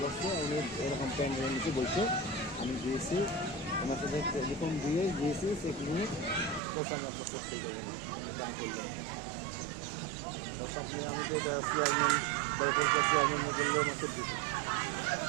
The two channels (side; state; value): left; drops out; at 6.6 s